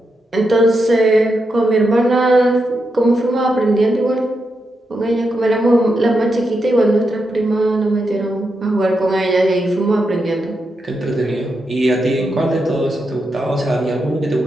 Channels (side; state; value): both; normal; correlation 0.85